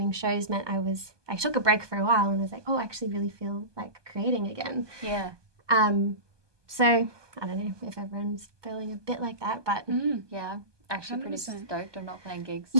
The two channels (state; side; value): late; left; 1.2 ms